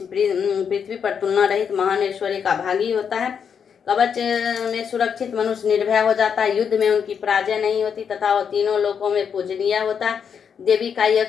पृथ्वी पर तुलना रहित महान ऐश्वर्य का भागी होता है। कवच में सुरक्षित मनुष्य निर्भय हो जाता है। युद्ध में उनकी पराजय नहीं होती तथा वह तीनों लोकों में पूजनीय होता है। देवी का यह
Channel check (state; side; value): quieter; right; 7.1 dB